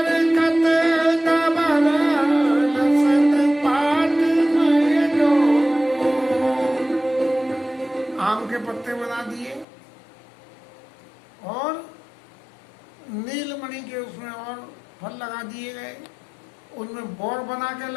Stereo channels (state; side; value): drops out; right; at 9.7 s